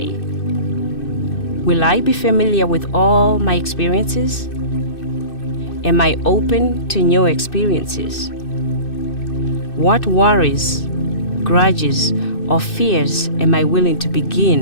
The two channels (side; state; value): right; late; 2.6 ms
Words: Will I be familiar with all my experiences? Am I open to new experiences? What worries grudges or fears am I willing to